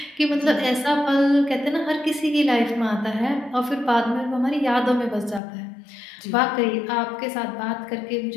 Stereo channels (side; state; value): right; drops out; at 5.4 s